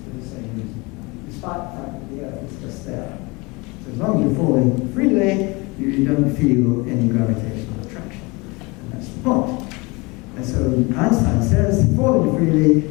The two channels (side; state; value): right; quieter; 26.1 dB